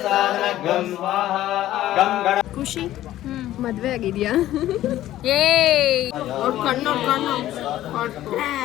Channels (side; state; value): right; quieter; 13.9 dB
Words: ಖುಷಿ ಮದ್ವೆ ಆಗಿದ್ಯಾ? ಕಣ್ಣು